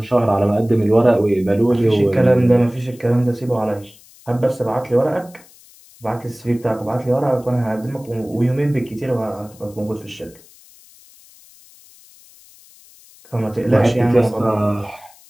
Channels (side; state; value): left; noise; hiss, 25 dB below the sound